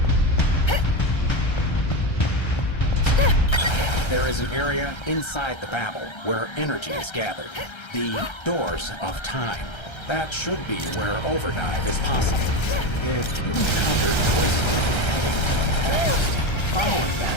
There is an area inside the Babel where energy is gathered. The Doors of Time. That should be where overdive is possible. If you encounter Twisted heading to the past, following that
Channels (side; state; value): right; late; 1.3 ms